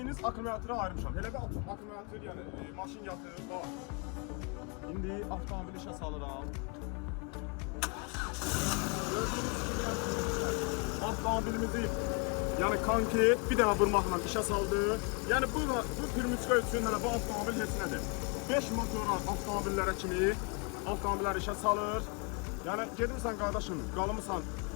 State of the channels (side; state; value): right; quieter; 33.5 dB